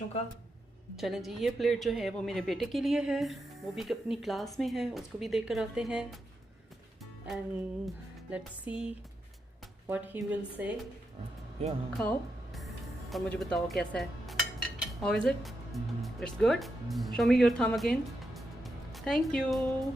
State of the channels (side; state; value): both; normal; correlation 0.85